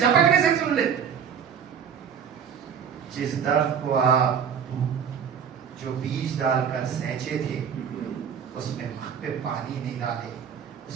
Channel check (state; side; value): quieter; left; 7.6 dB